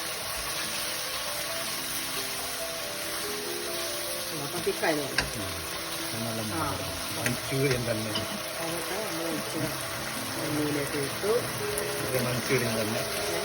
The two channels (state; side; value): identical; both; correlation 1.00